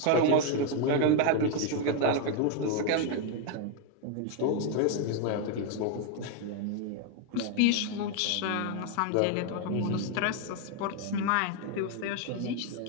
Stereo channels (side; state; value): both; different; correlation 0.01